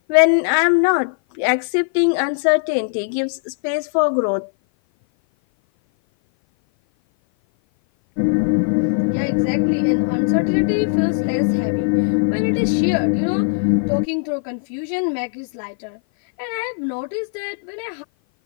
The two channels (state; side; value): silent; right; 56 dB below the other